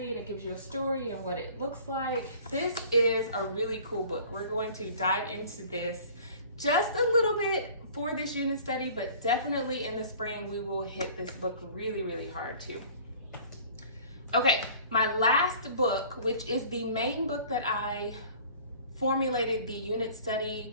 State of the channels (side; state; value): both; inverted; correlation -0.48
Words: and it gives you a story and what it looks like. This is a really cool book. We're going to dive into this just a little bit for this unit study, but definitely in the spring we will hit this book really, really hard too. Okay, my last book, which is the main book that I formulated the unit